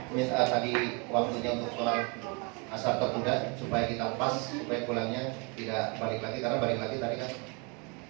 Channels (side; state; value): left; quieter; 32.2 dB